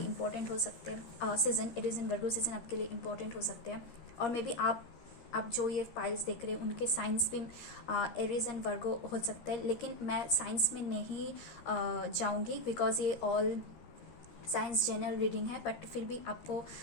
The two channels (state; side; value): late; right; 13 ms